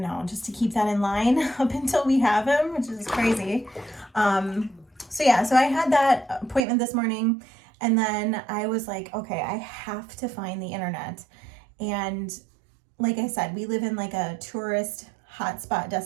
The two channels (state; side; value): drops out; left; at 6.7 s